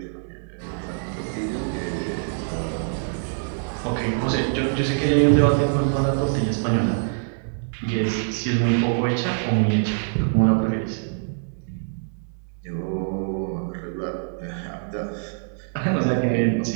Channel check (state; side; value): silent; left; digital silence